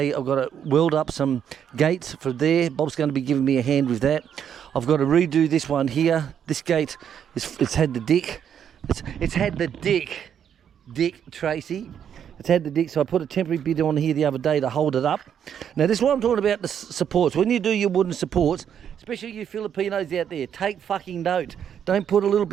I've got to weld up some gates for there. Bob's going to be giving me a hand with that. I've got to redo this one here. This gate, it's had the dick. It's had the dick, Tracy. It's had the dick, so I put a temporary bit on here the other day to hold it up. Now this is what I'm talking about, the supports. When you do your wooden supports, especially you Filipinos out there, take fucking note. Don't put a little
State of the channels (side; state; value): left; quieter; 8.7 dB